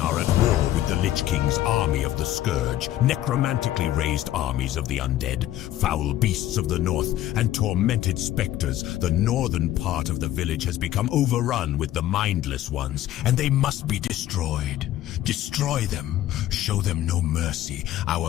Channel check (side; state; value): right; quieter; 13.5 dB